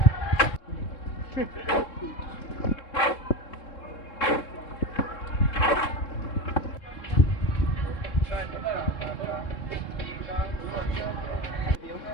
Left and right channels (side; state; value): right; late; 3.7 ms